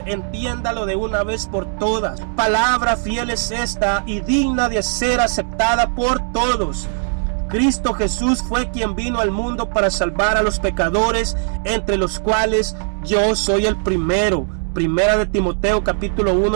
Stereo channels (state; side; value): silent; left; digital silence